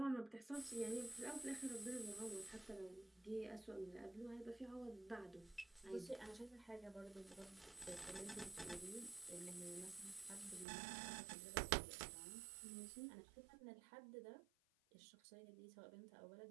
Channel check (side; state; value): left; drops out; at 10.7 s